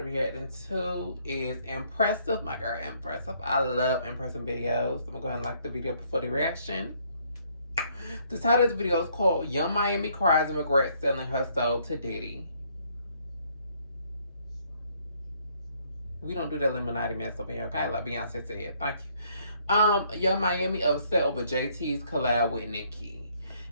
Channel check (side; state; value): both; inverted; correlation -0.66